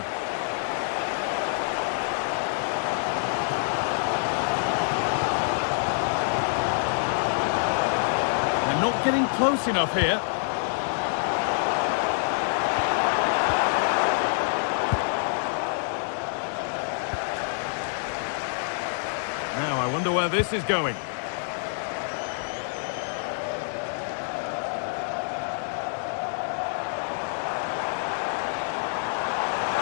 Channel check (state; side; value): silent; right; digital silence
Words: They're not getting close enough here. Now, I wonder where this is going.